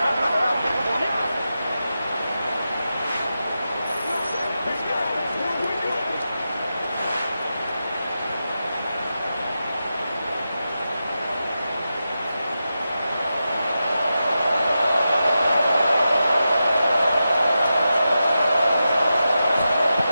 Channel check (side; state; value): both; inverted; correlation -0.90